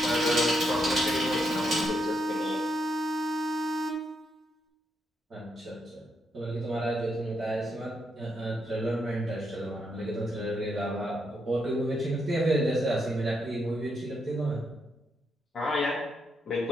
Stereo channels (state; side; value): normal; both; correlation 0.79